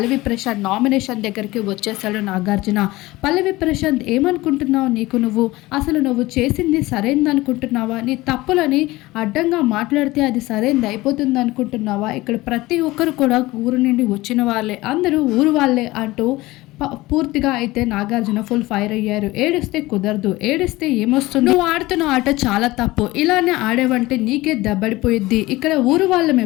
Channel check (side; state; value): right; quieter; 19.4 dB